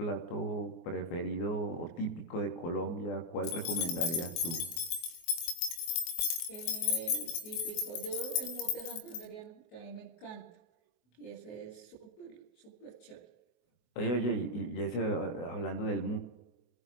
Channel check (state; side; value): late; right; 23 ms